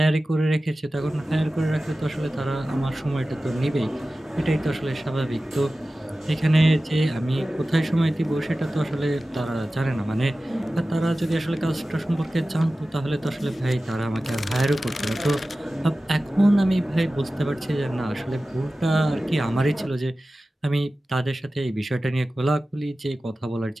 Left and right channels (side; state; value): both; normal; correlation 0.95